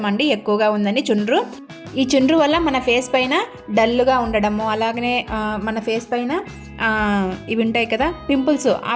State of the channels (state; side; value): identical; both; correlation 1.00